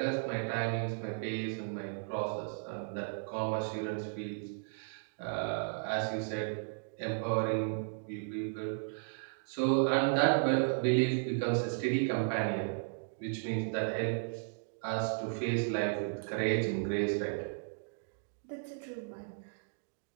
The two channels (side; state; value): left; silent; digital silence